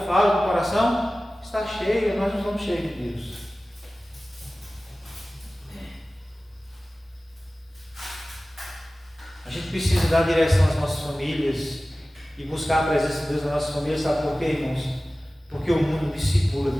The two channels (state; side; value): normal; both; correlation 0.97